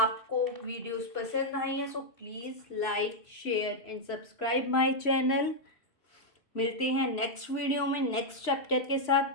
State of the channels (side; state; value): right; late; 3.0 ms